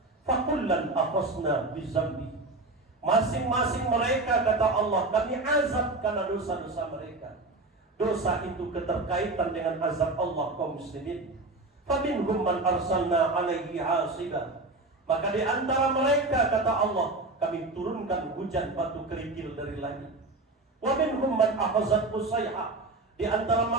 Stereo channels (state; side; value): quieter; left; 3.1 dB